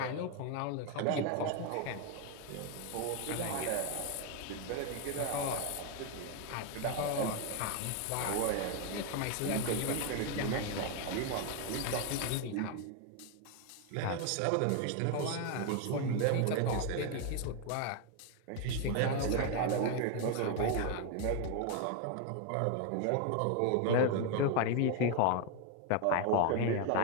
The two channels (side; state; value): both; different; correlation 0.01